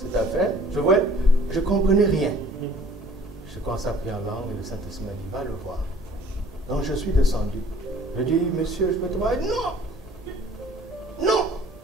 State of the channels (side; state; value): both; normal; correlation 0.53